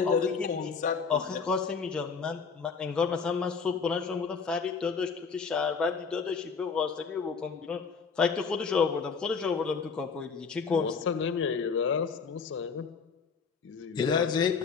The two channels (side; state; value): right; quieter; 5.5 dB